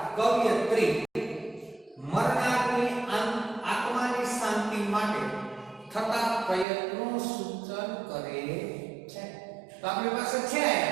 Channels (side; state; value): left; drops out; at 6.7 s